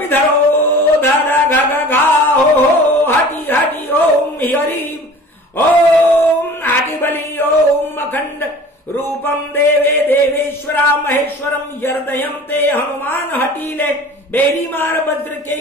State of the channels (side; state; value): both; normal; correlation 0.43